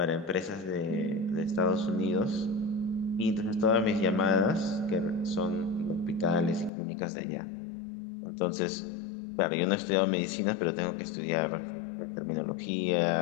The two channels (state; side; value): drops out; right; at 6.7 s